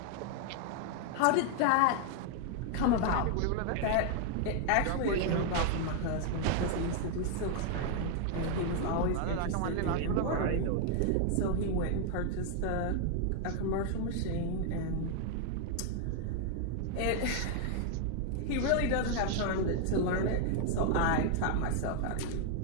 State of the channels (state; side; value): different; both; correlation 0.00